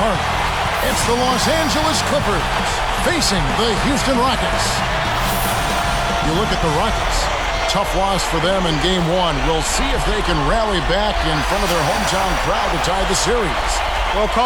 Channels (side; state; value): both; identical; correlation 1.00